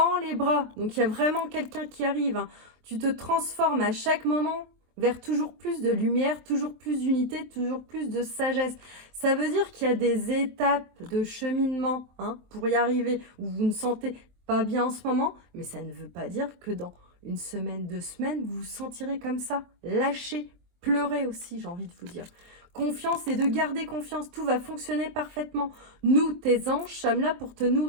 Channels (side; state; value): left; late; 23 ms